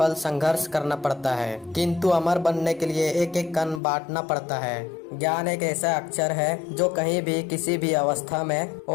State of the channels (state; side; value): drops out; right; at 3.8 s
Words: संघर्ष करना पड़ता है, किंतु अमर बनने के लिए एक एक कण बांटना पड़ता है। ज्ञान एक ऐसा अक्षर है जो कहीं भी किसी भी अवस्था में